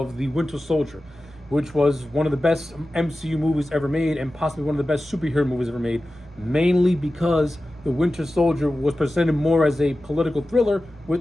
The Winter Soldier, which was one of the best MCU movies ever made and possibly one of the best superhero movies ever made, mainly because The Winter Soldier was presented more as a political thriller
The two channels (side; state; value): both; normal; correlation 0.94